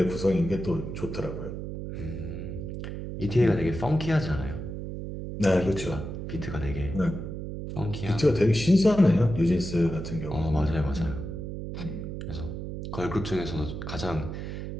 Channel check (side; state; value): right; noise; hum, 6 dB below the sound